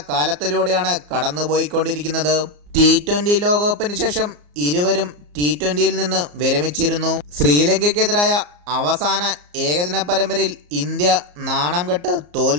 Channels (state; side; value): late; left; 34 ms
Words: കാലത്തിലൂടെയാണ് കടന്നുപോയിക്കൊണ്ടിരിക്കുന്നത്. T20 ലോകകപ്പിന് ശേഷം ഇരുവരും T20യിൽ നിന്ന് വിരമിച്ചിരുന്നു. ശ്രീലങ്കയ്ക്കെതിരായ അവസാന ഏകദിന പരമ്പരയിൽ ഇന്ത്യ നാണം കെട്ട്